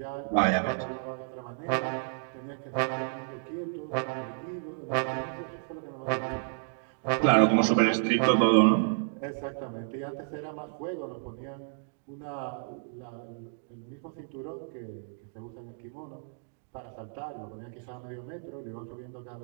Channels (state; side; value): silent; left; digital silence